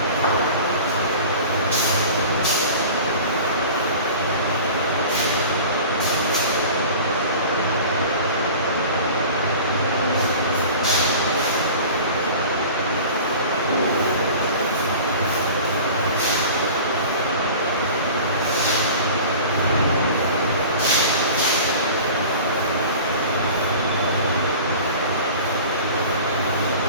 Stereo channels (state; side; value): inverted; both; correlation -0.39